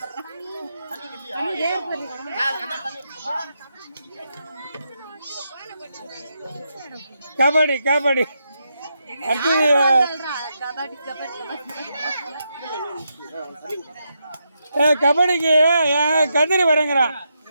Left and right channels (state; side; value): inverted; both; correlation -0.83